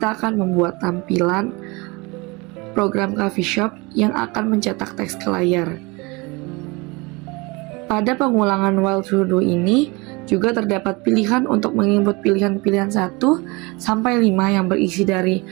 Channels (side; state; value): left; quieter; 25.9 dB